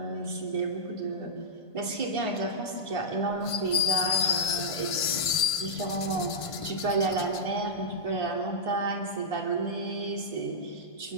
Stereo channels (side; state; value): right; late; 1.5 ms